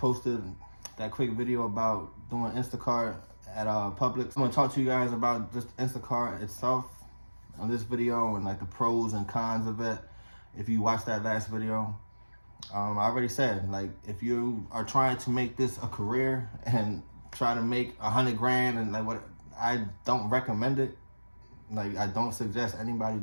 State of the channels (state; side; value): inverted; both; correlation -1.00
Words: that quick video about doing Instacart at Publix. I'm gonna talk to you guys about just Instacart itself on this video and like the pros and cons of it. If you watched that last video, I already said, like, if you are trying to make this a career and try to make 100 grand and like what, I don't recommend it. Like, I don't suggest anybody